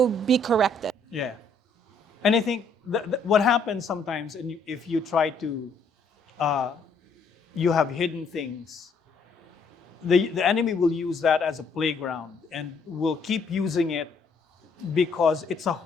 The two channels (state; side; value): quieter; right; 3.4 dB